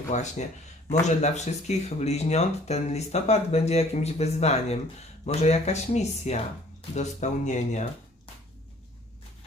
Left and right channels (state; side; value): normal; both; correlation 0.55